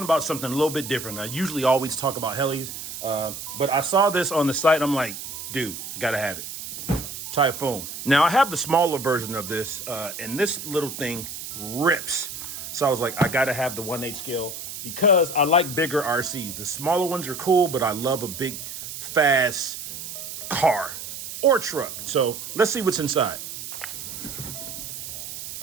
about something a little bit different. I usually always talk about helis, but I saw this on the site. I'm like, dude, I gotta have it. Typhoon. Now, I have the smaller version of this, and this little thing rips. So I was like, I gotta have the 1/8 scale because I like bigger RCs. The smaller ones are cool, but I love a big, fast car or truck. So let's see what's inside.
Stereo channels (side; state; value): right; noise; hiss, 9 dB below the sound